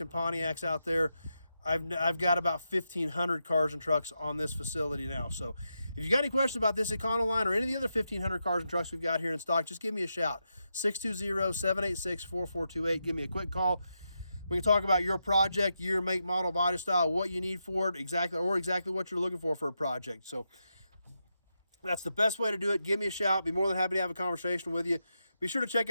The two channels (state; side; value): inverted; both; correlation -0.86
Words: and Pontiacs out there. I've got about 1,500 cars and trucks on this facility now. So if you got any questions about this Econoline or any of the other 1,500 cars and trucks we've got here in stock, just give me a shout. 620-786-4428. Give me a quick call. We can talk about your project, year, make, model, body style, what you need for it, exactly what you're looking for a project. So that's the best way to do it. Give me a shout. Be more than happy to have a conversation with you. Be sure to check